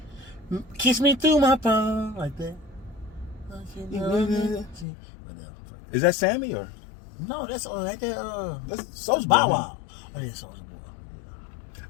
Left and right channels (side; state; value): right; drops out; at 4.9 s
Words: Kiss me through my phone. Like that. Whatever. Is that Sammy or? No, that's right there. That's Soulja Bow Boy. Wow. Oh, yeah, Soulja